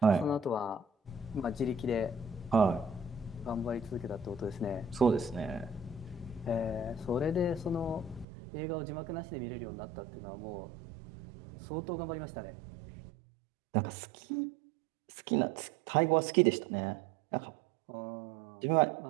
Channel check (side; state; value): left; drops out; at 8.2 s